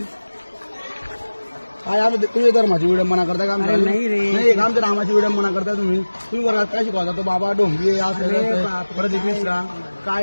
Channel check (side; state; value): both; inverted; correlation -1.00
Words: काय आम्ही तुम्ही धर्माची विडंबना करता का? नाही रे, नाही आमच्या रामाची विडंबना करता तुम्ही. तुम्ही वर्गात काय शिकवता? तो बाबा डोंबी असं प्रदीप मिश्रा